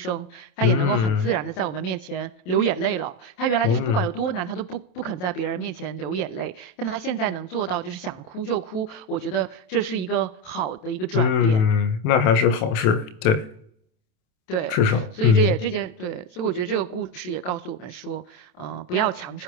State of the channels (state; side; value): late; right; 27 ms